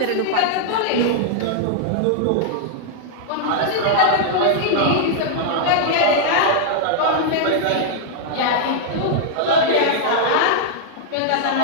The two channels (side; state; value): both; different; correlation -0.01